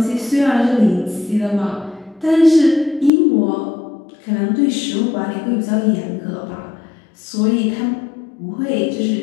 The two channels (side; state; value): right; drops out; at 3.1 s